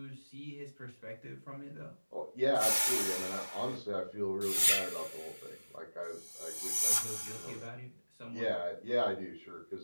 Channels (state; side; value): inverted; both; correlation -1.00